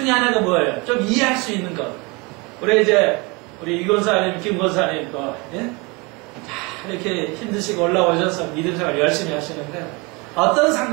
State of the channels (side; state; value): left; quieter; 27.6 dB